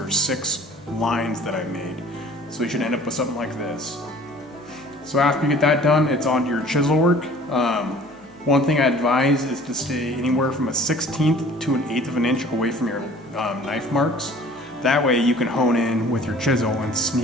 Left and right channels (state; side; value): normal; both; correlation 0.49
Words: 6 lines that I made. So you should end up with something like this. So after you get that done, it's on to your chisel work. One thing I advise is to stay anywhere from a 1/16 to 1/8 of an inch away from your knife marks. That way you can hone in with your chisel and